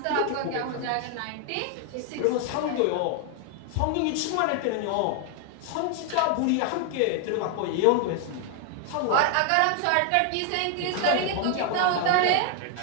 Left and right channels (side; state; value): both; different; correlation 0.00